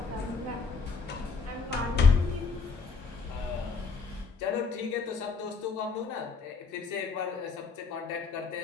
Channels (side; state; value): right; quieter; 4.9 dB